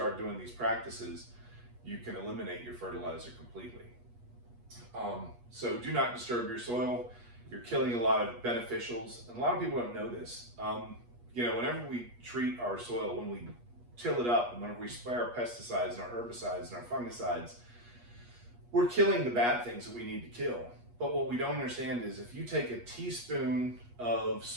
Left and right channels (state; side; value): late; left; 8.3 ms